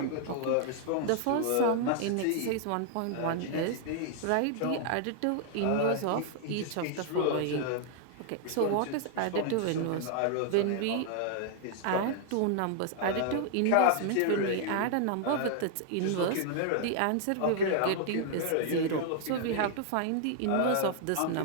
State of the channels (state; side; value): different; both; correlation 0.00